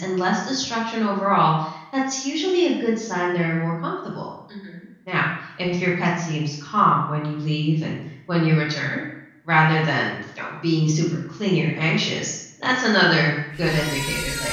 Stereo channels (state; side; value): identical; both; correlation 1.00